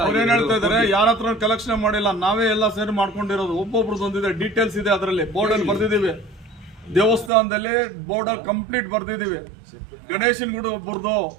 ಅವ್ರು ಏನ್ ಹೇಳ್ತಾ ಇದಾರೆ, ಯಾರ ಹತ್ರ ಕಲೆಕ್ಷನ್ ಮಾಡಿಲ್ಲ, ನಾವೇ ಎಲ್ಲ ಸೇರಿ ಮಾಡ್ಕೊಂಡಿರೋದು. ಒಬ್ಬೊಬ್ರದ್ದು ಒಂದಿದೆ, ಡೀಟೇಲ್ಸ್ ಇದೆ ಅದರಲ್ಲಿ, ಬೋರ್ಡಲ್ಲಿ ಬರ್ದಿದ್ದೀವಿ. ದೇವಸ್ಥಾನದಲ್ಲಿ ಬೋರ್ಡಲ್ಲಿ ಕಂಪ್ಲೀಟ್ ಬರ್ದಿದ್ದೀವಿ. ಗಣೇಶನ್ ಗುಡಿ ಒಬ್ಬರದು,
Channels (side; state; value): left; drops out; at 7.3 s